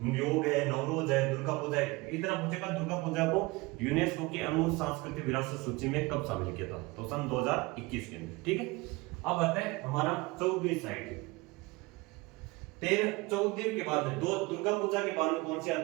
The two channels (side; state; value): left; quieter; 23.5 dB